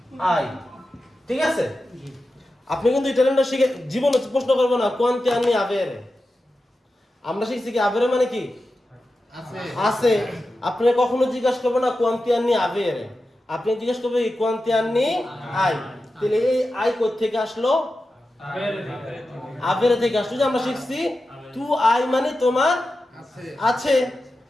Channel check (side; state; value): both; normal; correlation 0.92